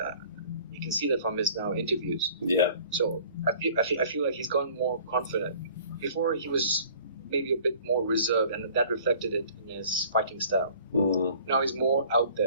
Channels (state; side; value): inverted; both; correlation -0.51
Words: You can see that from his now interviews. Yeah. So I feel like he's gotten more confident. Before he was maybe a bit more reserved, and that reflected it in his fighting style. Now he's more out